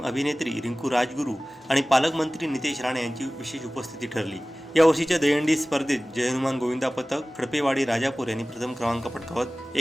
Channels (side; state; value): both; normal; correlation 0.98